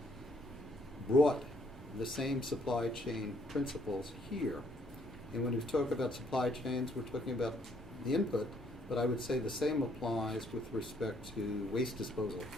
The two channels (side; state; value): both; normal; correlation 0.67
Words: brought the same supply chain principles here. And when we talk about supply chains, we're talking about the input, but I would say the same applies with respect to waste disposal,